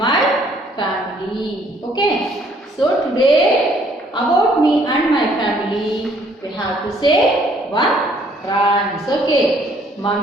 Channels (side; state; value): both; normal; correlation 0.63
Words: family. Okay, so today about me and my family we have to say one rhymes. Okay,